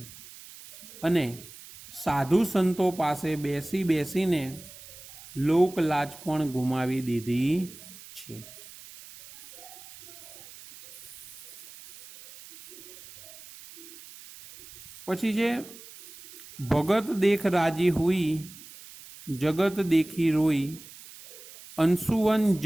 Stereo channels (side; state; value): right; noise; hiss, 18 dB below the sound